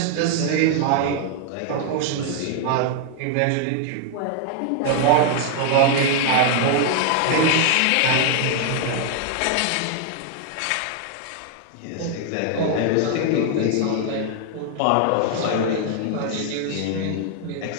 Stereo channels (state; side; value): different; both; correlation 0.00